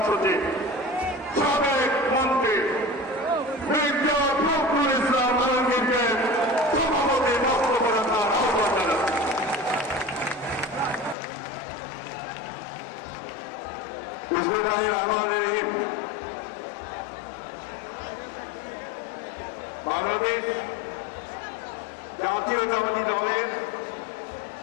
সাবেক মন্ত্রী মির্জা ফখরুল ইসলাম আলমগীরকে সভাপতি বক্তব্য রাখার আহ্বান জানাচ্ছি। বাংলাদেশ জাতীয়তাবাদী দলের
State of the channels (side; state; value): right; drops out; at 11.2 s